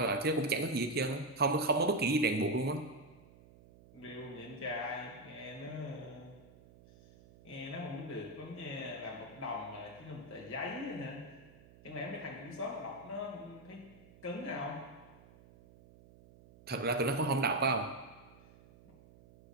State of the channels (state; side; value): noise; right; hum, 22 dB below the sound